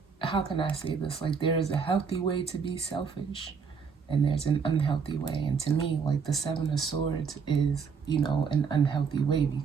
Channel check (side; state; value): left; quieter; 5.8 dB